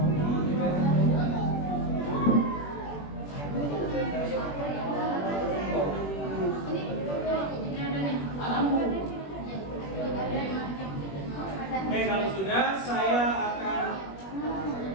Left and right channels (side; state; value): right; late; 21 ms